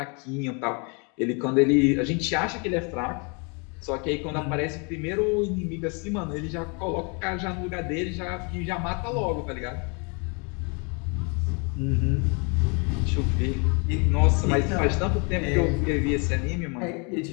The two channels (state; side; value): quieter; right; 33.7 dB